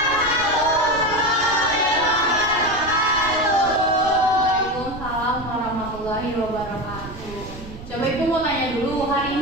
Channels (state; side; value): noise; right; rumble, 14 dB below the sound